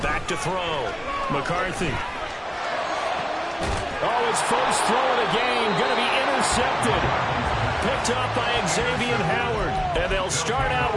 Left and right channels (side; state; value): both; identical; correlation 1.00